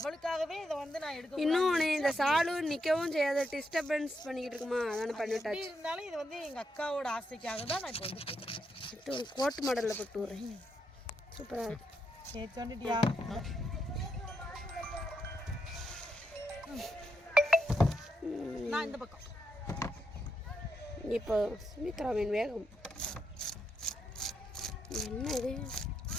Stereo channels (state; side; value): normal; both; correlation 0.81